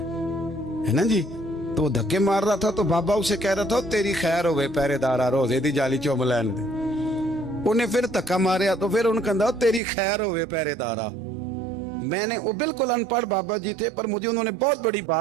ना जी। तो वो धक्के मार रहा था तो बाबा उसे कह रहा था तेरी खैर होवे पहरेदारा रोजे दी जाली चुम लैन दे। उन्हें फिर धक्का मारिया तो फिर उन्हें कहता तेरी खैर होवे पहरेदारा। मैंने, वो बिल्कुल अनपढ़ बाबा जी थे पर मुझे उन्होंने बहुत बड़ी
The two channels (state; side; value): drops out; left; at 9.8 s